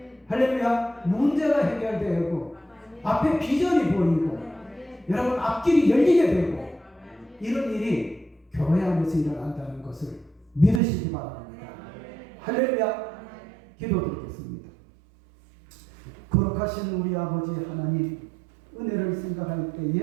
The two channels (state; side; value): drops out; left; at 10.8 s